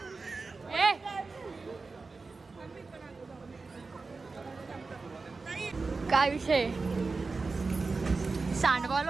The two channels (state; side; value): quieter; left; 4.1 dB